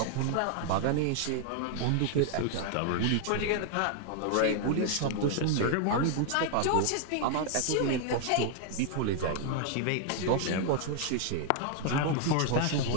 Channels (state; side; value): different; both; correlation 0.00